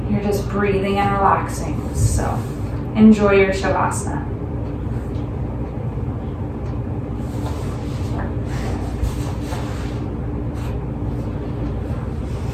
You're just breathing and relaxing. So enjoy your Shavasana.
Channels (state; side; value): identical; both; correlation 1.00